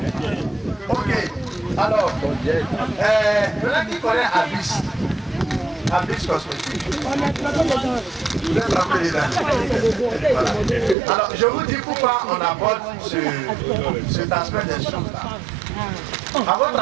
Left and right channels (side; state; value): left; drops out; at 11.0 s